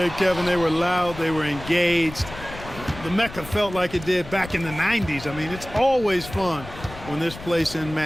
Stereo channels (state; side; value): noise; left; rumble, 14 dB below the sound